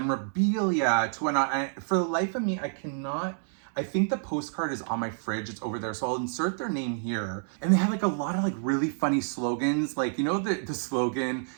to whatnot. And for the life of me, I think the postcard is on my fridge. It's over there. So I'll insert their name here. And they had like a lot of like really funny slogans. Like, you know, the slogan,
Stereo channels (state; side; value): silent; left; digital silence